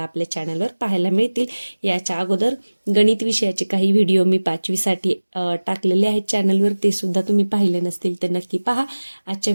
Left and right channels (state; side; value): inverted; both; correlation -1.00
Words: आपल्या चॅनलवर पाहायला मिळतील. याच्या अगोदर गणित विषयाचे काही व्हिडिओ मी 5वीसाठी टाकलेले आहेत चॅनलवर, ते सुद्धा तुम्ही पाहिले नसतील तर नक्की पहा. आजच्या